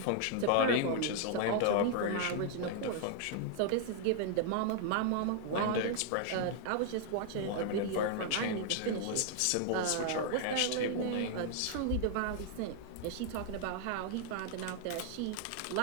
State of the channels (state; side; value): different; both; correlation -0.01